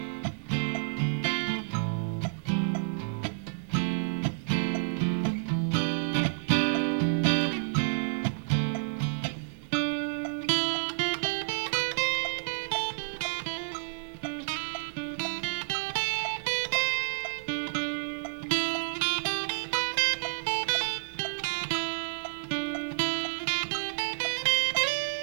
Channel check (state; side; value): silent; left; digital silence